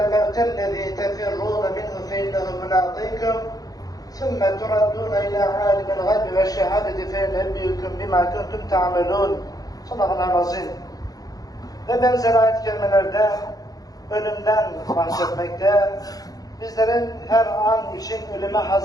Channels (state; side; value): late; right; 0.18 ms